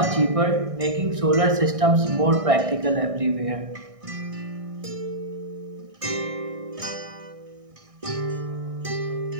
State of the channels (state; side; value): late; left; 1.6 ms